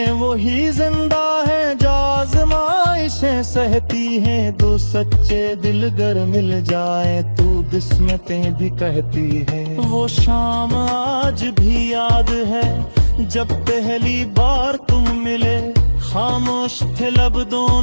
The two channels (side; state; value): both; inverted; correlation -1.00